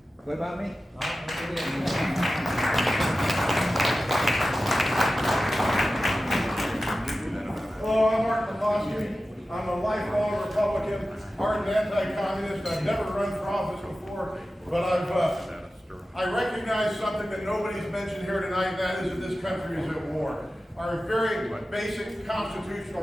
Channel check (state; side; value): normal; both; correlation 0.94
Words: What about me? Hello, I'm Mark McCloskey. I'm a lifelong Republican, ardent anti-communist. I've never run for office before, but I recognize something that nobody's mentioned here tonight, and that is that this country is at war. Our very basic constitutional